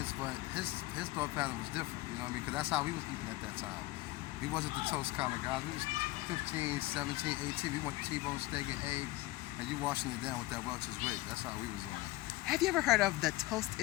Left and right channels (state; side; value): quieter; right; 18.9 dB